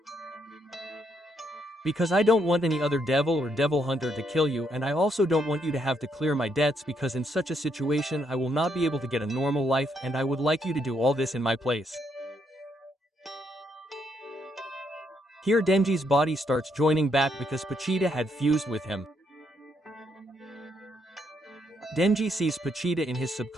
Because I don't want any other devil or devil hunter to kill you and I also don't want you to have to clear my debts because in such a situation I will not be able to get a normal life and I would like you to do all this in my place. Here Denji's body starts joining back because Pochita had fused with him. Denji sees Pochita in his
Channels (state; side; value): normal; both; correlation 0.75